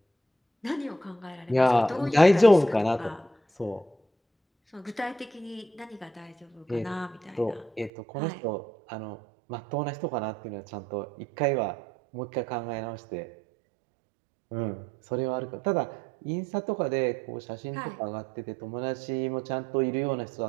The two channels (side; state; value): left; drops out; at 7.9 s